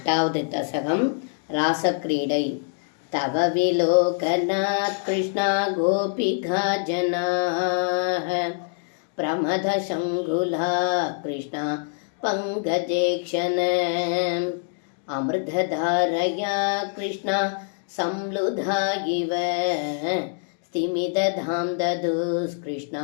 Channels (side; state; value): right; silent; digital silence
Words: தசகம் ராசக்கிரீடை. தவ விலோகநாத் கிருஷ்ணா கோபிகா ஜனாஹ பிரமத சங்குலா கிருஷ்ணா பங்கஜேக்ஷண அமிர்ததாரயா கிருஷ்ணா சம்லுதா இவ स्तिमिदधां ददुस्कृष्णा